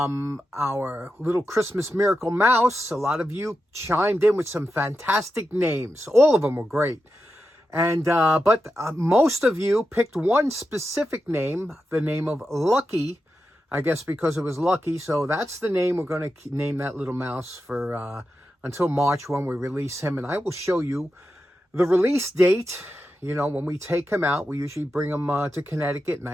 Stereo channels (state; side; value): normal; both; correlation 0.89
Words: little Christmas miracle mouse. A lot of you chimed in with some fantastic names. All of them were great. And but most of you picked one specific name, the name of Lucky, I guess because it was lucky. So that's the name we're going to name that little mouse for until March when we release him. And I will show you the release date. You know, when we take him out, we usually bring him to Connecticut,